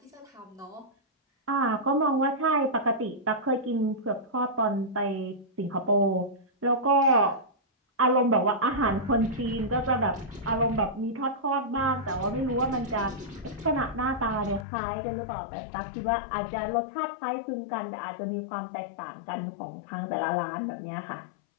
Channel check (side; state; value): right; drops out; at 14.7 s